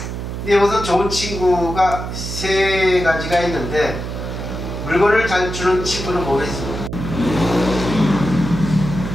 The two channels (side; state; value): right; noise; hum, 6 dB below the sound